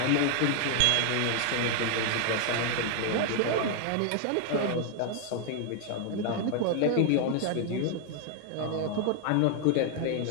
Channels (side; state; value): both; different; correlation 0.00